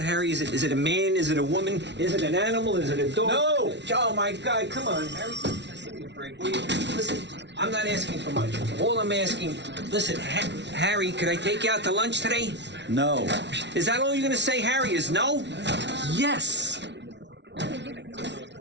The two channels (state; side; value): late; left; 0.51 ms